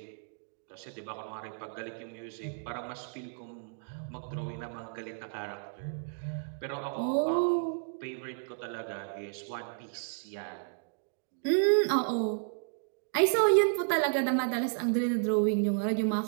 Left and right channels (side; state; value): left; silent; digital silence